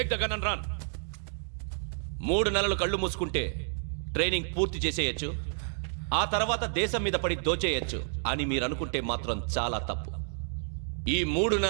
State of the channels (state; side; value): silent; left; digital silence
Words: the gun and run. 3 నెలలు కళ్ళు మూసుకుంటే ట్రైనింగ్ పూర్తి చేసేయచ్చు, ఆ తర్వాత దేశం మీద పడి దోచేయచ్చు అని మీరు అనుకుంటే మాత్రం చాలా తప్పు. ఈ 3